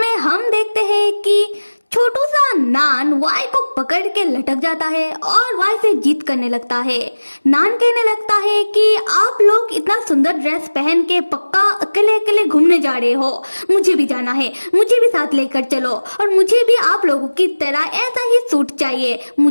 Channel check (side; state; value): both; inverted; correlation -1.00